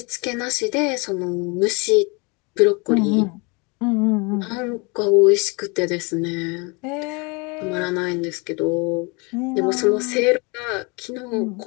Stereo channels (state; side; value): quieter; right; 29.7 dB